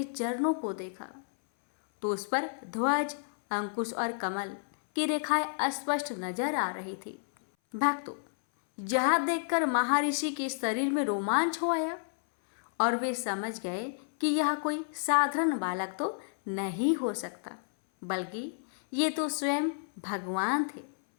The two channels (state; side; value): silent; right; 57 dB below the other